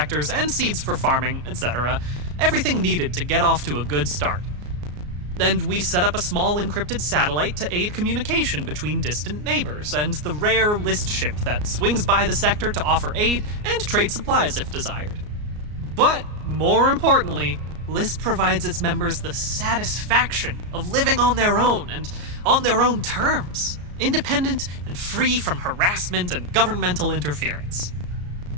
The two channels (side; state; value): left; late; 34 ms